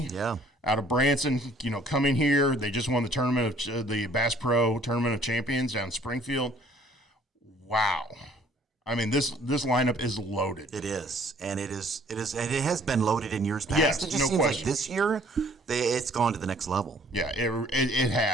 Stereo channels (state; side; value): normal; both; correlation 0.58